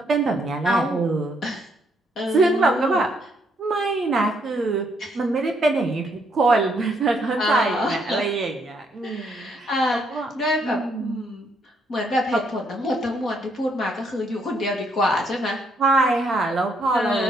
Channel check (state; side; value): normal; both; correlation 0.72